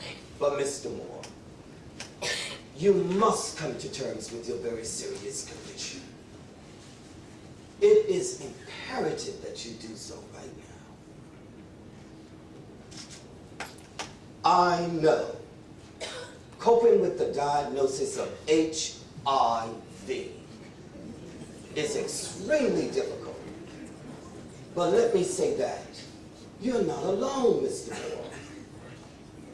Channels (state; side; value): identical; both; correlation 1.00